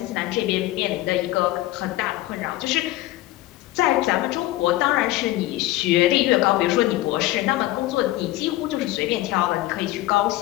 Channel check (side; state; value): right; quieter; 16.8 dB